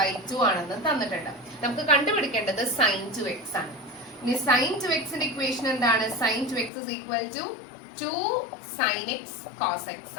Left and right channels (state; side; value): drops out; right; at 6.7 s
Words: by 2 ആണെന്നും തന്നിട്ടുണ്ട്. നമുക്ക് കണ്ടുപിടിക്കേണ്ടത് sin 2x ആണ്. ഇനി sin 2x ന്റെ ഇക്വേഷൻ എന്താണ്? sin 2x is equal to 2 sin x cos x